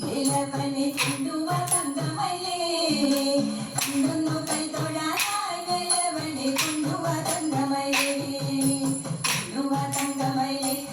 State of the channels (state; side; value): identical; both; correlation 1.00